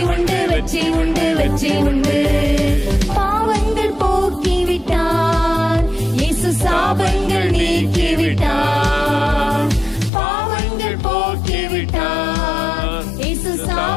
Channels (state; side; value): drops out; right; at 10.1 s